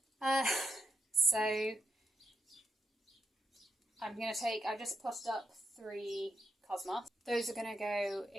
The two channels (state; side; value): normal; both; correlation 0.81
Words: So I've just potted up 3 cosmos. Those are going to go